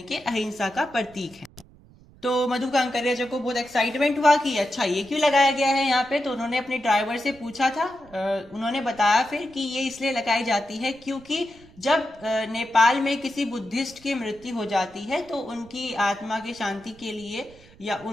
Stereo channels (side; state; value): right; noise; rumble, 25 dB below the sound